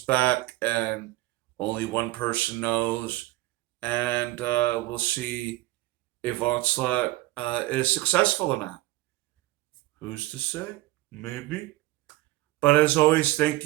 back, and only one person knows. And we'll see if Onslaught is successful or not. Who's to say? Maybe. But as always, thank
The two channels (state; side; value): quieter; left; 18.0 dB